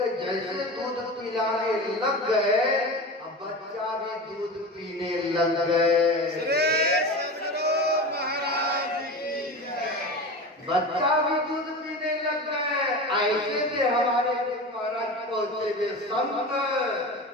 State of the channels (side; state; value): both; normal; correlation 0.28